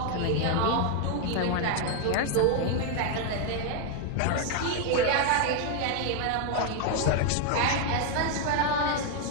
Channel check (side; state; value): both; different; correlation 0.01